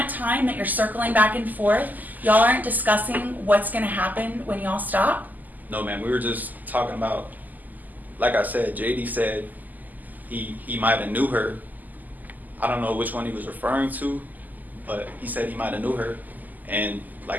time that you're circling back and forth, y'all aren't discussing what's going to happen when y'all stop? No, ma'am. We were just talking about, like I said, JD said he might have knew her. I don't know which one he was referring to, but he said he might have knew her, and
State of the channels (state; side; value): late; left; 0.083 ms